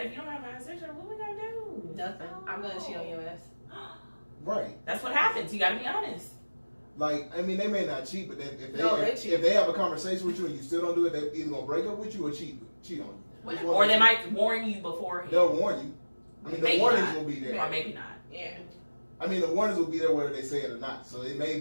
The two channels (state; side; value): inverted; both; correlation -1.00